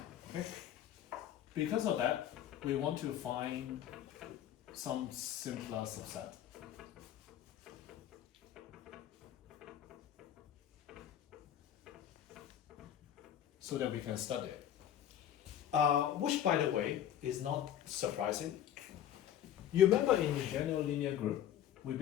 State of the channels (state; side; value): quieter; right; 10.7 dB